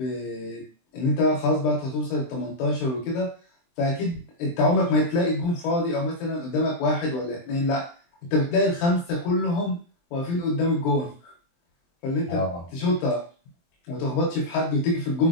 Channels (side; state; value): right; late; 23 ms